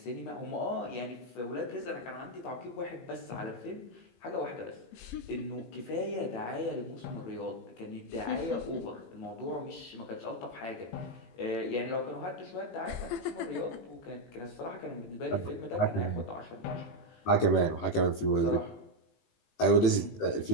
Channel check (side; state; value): right; late; 18 ms